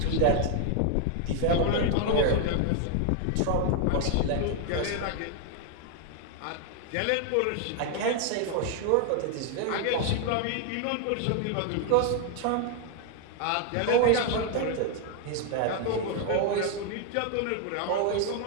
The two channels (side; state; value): both; different; correlation 0.00